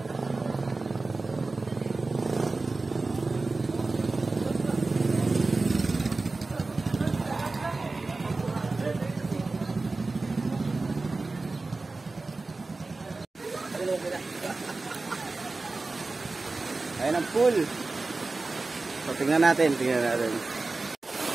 pool. So, tingnan natin. Ito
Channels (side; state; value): left; quieter; 3.5 dB